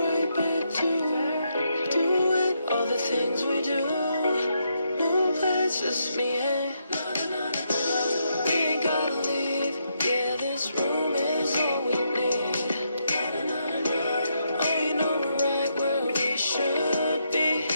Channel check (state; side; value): inverted; both; correlation -0.79